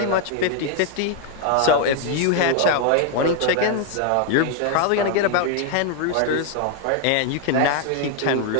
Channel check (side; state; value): both; different; correlation 0.01